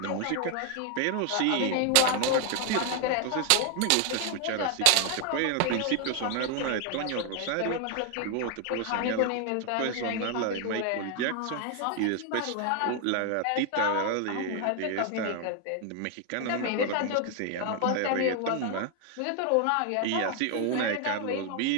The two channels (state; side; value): different; both; correlation 0.01